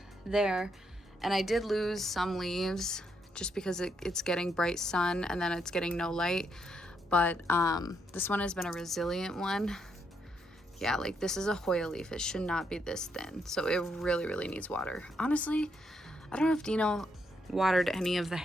there. And I did lose some leaves just because it's getting bright sun and then it's getting no light. But this one has been a resilient one. Yeah, like this is a Hoya leaf. It should not be this thin. So it really, really needs water. Honestly, I don't know if Dino watered any of the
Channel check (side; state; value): both; normal; correlation 0.77